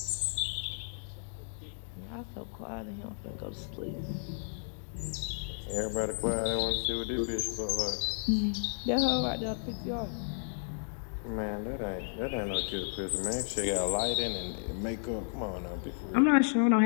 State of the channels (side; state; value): right; silent; digital silence